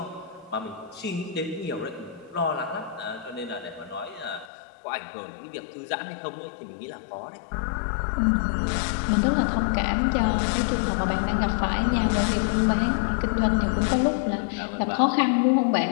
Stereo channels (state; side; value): drops out; right; at 4.5 s